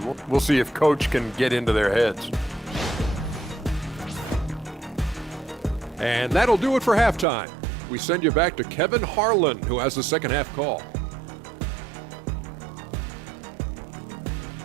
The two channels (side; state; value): left; drops out; at 7.2 s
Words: We'll see if Coach can get into their heads. And that'll do it for halftime. We send you back to Kevin Harlan, who has the second half call.